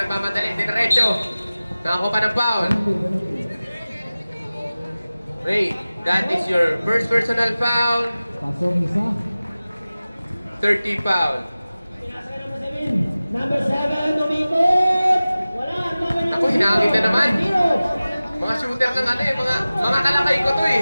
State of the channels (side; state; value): both; inverted; correlation -0.97